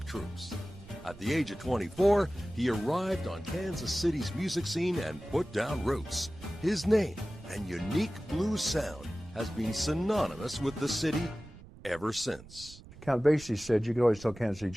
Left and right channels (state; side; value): noise; right; rumble, 19 dB below the sound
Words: troupes. At the age of 24, he arrived on Kansas City's music scene and put down roots. His name and unique blues sound has been synonymous with the city ever since. Count Basie said you could always tell Kansas City